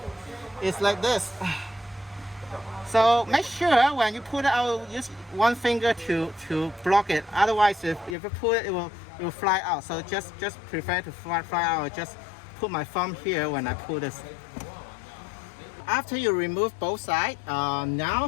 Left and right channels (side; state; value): right; drops out; at 8.2 s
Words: It's like this. So make sure when you pull it out, use 1 finger to block it. Otherwise, if you pull it, it will fly out. So just prefer to fly out. Just put my thumb here when I pull this. After you remove both sides,